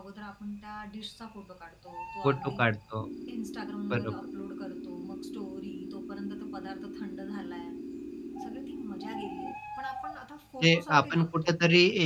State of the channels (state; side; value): identical; both; correlation 1.00